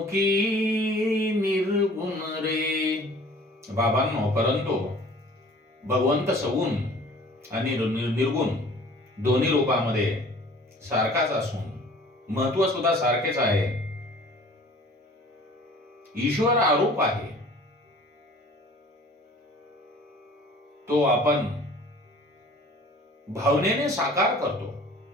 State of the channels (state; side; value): normal; both; correlation 0.49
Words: की निर्गुण रे. बाबांनो, परंतु भगवंत सगुण आणि निर्गुण दोन्ही रूपामध्ये सारखाच असून महत्व सुद्धा सारखेच आहे. ईश्वर आरूप आहे, तो आपण भावनेने साकार करतो.